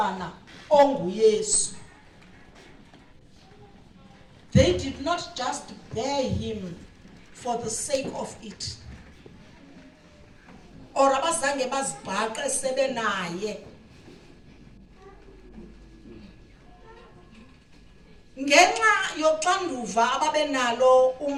onguYesu. They did not just bear him for the sake of it, or abazange bazibhaqe sebenaye. Ngenxa yoxanduva ababenalo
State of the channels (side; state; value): both; identical; correlation 1.00